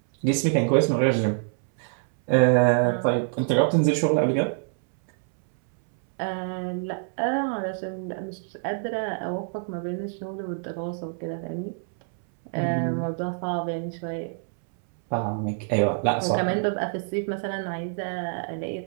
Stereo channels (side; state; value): left; silent; 61 dB below the other